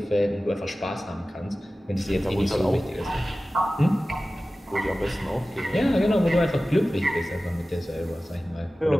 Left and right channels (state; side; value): normal; both; correlation 0.96